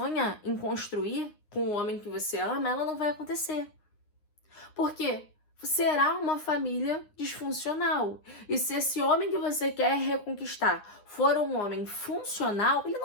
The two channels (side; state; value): right; late; 9.7 ms